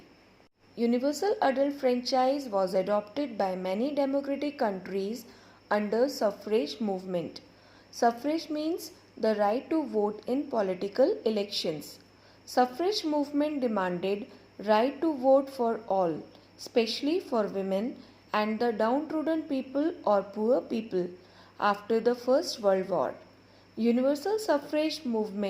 Universal adult franchise was adopted by many democratic countries under suffrage movement. Suffrage means the right to vote in political elections. Suffrage movement demanded right to vote for all, especially for women and the downtrodden people or poor people after the First World War. Universal suffrage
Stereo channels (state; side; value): identical; both; correlation 1.00